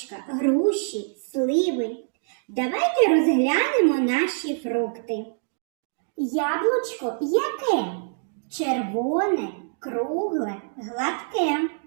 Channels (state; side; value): silent; left; digital silence